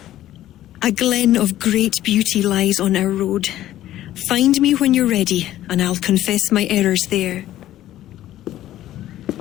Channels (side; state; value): right; quieter; 13.5 dB